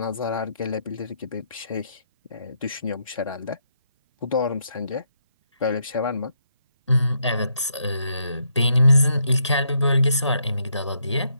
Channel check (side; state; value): both; inverted; correlation -0.77